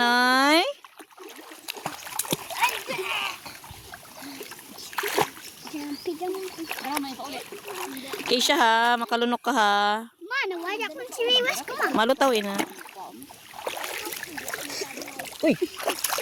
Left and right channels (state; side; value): identical; both; correlation 1.00